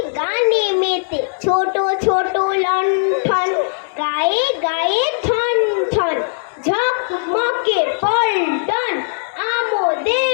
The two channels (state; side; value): silent; right; digital silence